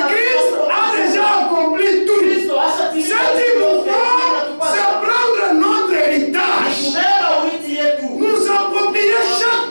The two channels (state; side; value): inverted; both; correlation -1.00